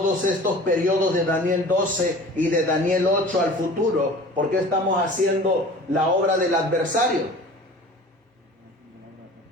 estos periodos de Daniel 12 y de Daniel 8 al futuro, por qué estamos haciendo la obra del adversario?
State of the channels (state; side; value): normal; both; correlation 0.43